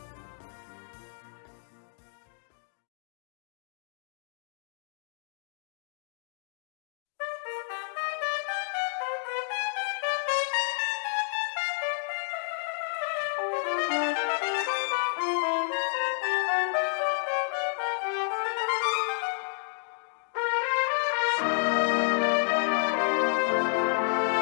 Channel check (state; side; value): silent; right; digital silence